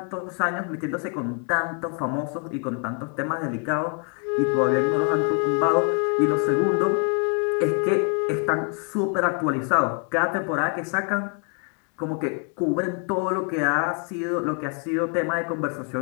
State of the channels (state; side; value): quieter; right; 38.0 dB